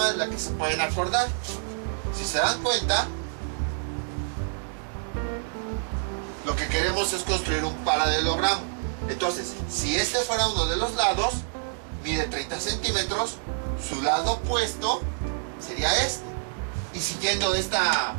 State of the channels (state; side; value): silent; left; 60 dB below the other